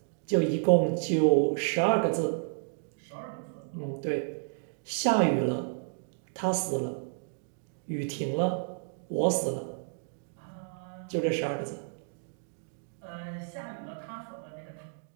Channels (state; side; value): silent; left; digital silence